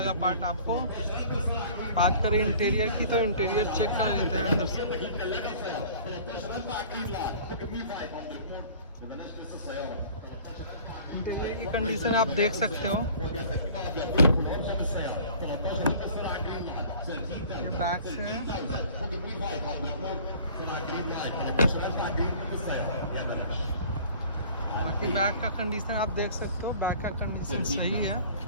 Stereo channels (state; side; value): inverted; both; correlation -0.47